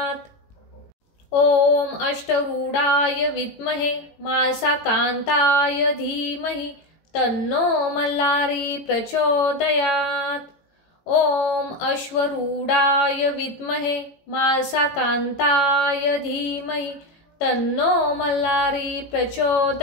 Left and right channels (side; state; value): right; late; 18 ms